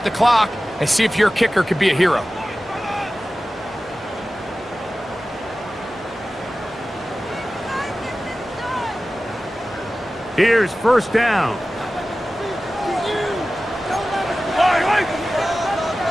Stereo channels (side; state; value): both; normal; correlation 0.95